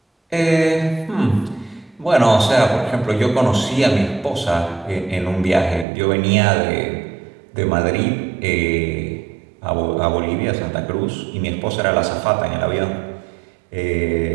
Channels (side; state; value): left; drops out; at 5.9 s